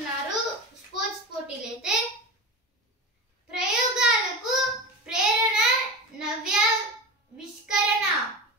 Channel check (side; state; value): both; normal; correlation 0.26